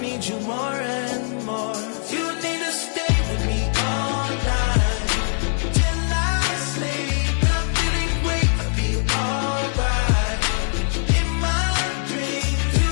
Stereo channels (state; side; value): silent; right; 62 dB below the other